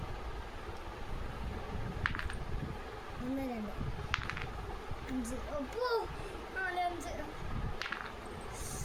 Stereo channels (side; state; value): both; identical; correlation 1.00